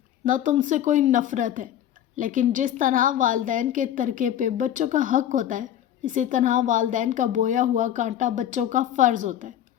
نہ تم سے کوئی نفرت ہے، لیکن جس طرح والدین کے ترکے پہ بچوں کا حق ہوتا ہے، اسی طرح والدین کا بویا ہوا کانٹا بچوں کا فرض ہوتا ہے۔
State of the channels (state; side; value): quieter; right; 11.0 dB